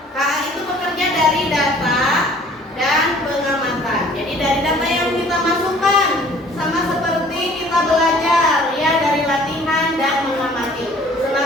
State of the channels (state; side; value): normal; both; correlation 0.53